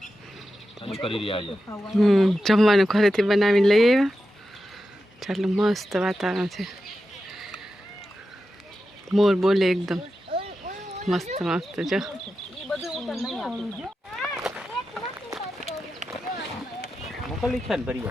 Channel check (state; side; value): normal; both; correlation 0.90